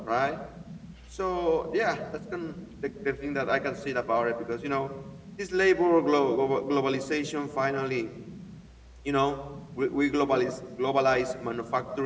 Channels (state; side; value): identical; both; correlation 1.00